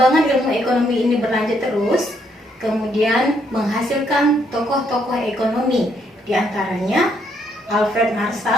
ilmu ekonomi ini berlanjut terus, kemudian menghasilkan tokoh-tokoh ekonomi, di antaranya Alfred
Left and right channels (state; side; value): normal; both; correlation 0.72